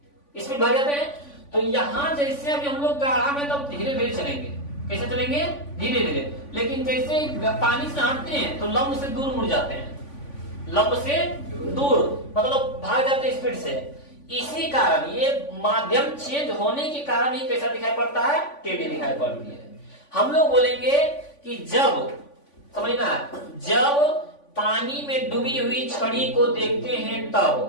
स्पीड भाग जाते हैं। तो यहाँ जैसे अभी हम लोग गाढ़ा में, तब धीरे धीरे चलेंगे। कैसे चलेंगे? धीरे धीरे। लेकिन जैसे पानी से हटते हैं तो लंब से दूर मुड़ जाते हैं। लंब से दूर मतलब भाग जाते हैं स्पीड से। इसी कारण ये माध्यम चेंज होने के कारण ही कैसा दिखाई पड़ता है? टेढ़ी दिखाई पड़ती है। हम लोग बोलेंगे कि जब, समझना, जब पानी में डूबी हुई छड़ी को देखते हैं,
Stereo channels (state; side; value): late; right; 3.5 ms